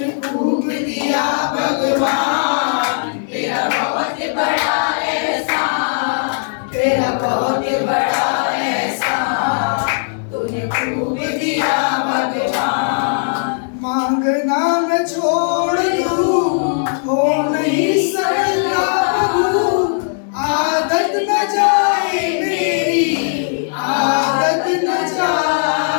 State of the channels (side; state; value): right; silent; digital silence